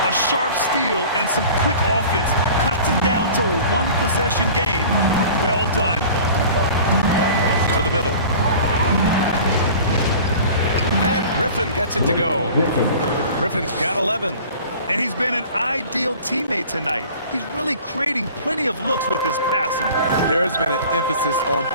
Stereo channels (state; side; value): inverted; both; correlation -0.43